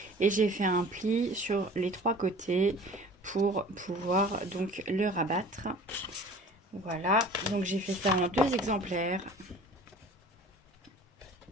Et j'ai fait un pli sur les trois côtés pour pouvoir donc le rabattre. Voilà, donc j'ai fait ça en 2 exemplaires.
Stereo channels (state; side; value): normal; both; correlation 0.45